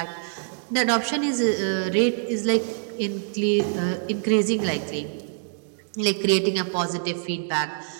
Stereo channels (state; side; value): silent; left; digital silence